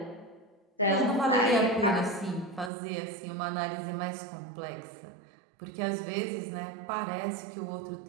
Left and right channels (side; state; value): left; drops out; at 2.7 s